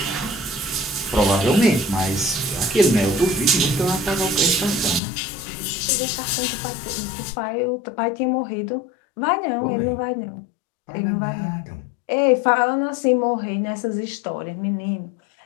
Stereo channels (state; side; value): drops out; right; at 5.0 s